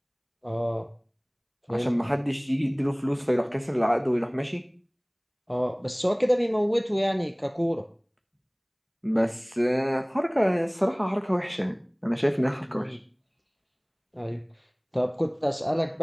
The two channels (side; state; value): both; identical; correlation 1.00